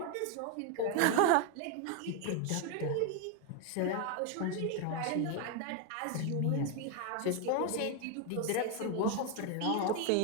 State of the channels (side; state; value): both; different; correlation 0.01